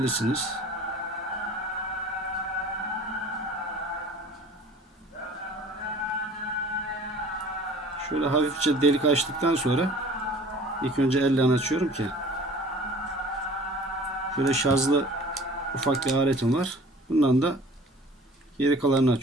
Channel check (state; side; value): normal; both; correlation 0.48